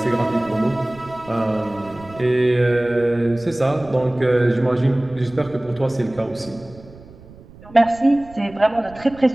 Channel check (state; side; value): noise; right; rumble, 21 dB below the sound